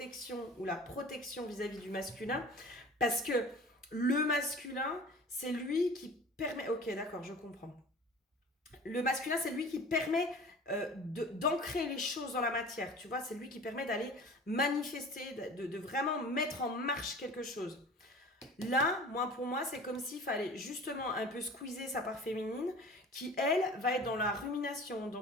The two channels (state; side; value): normal; both; correlation 0.42